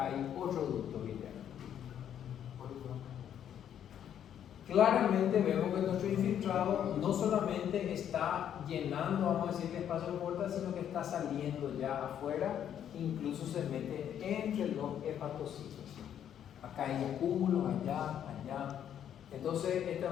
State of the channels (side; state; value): right; quieter; 9.7 dB